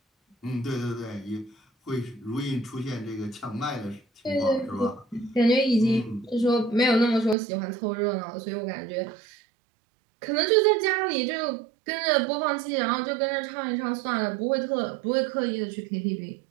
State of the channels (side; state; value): left; drops out; at 7.4 s